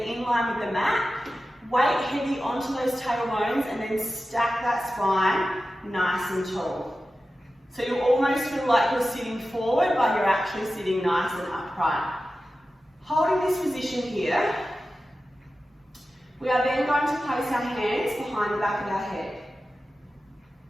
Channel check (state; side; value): normal; both; correlation 0.93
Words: in line with the mat. Weight heavy onto those tailbones and then stack that spine nice and tall. So you almost feel like you're sitting forward, but you're actually sitting nice and upright. Holding this position here, we are then going to place our hands behind the back of our head.